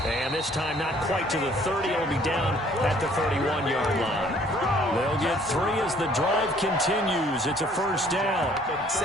And this time not quite to the 30. It'll be down at the 31-yard line. They'll get 3 as the drive continues. It's a first down.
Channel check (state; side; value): normal; both; correlation 0.59